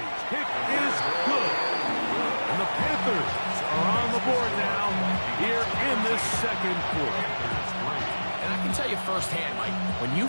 kick is good. And the Panthers are on the board now here in this second quarter. And I can tell you firsthand, Mike, when you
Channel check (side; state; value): both; inverted; correlation -1.00